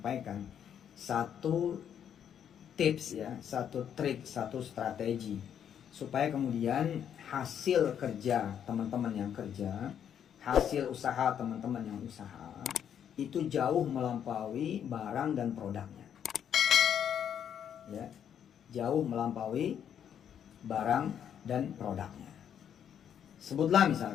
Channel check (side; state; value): right; quieter; 8.9 dB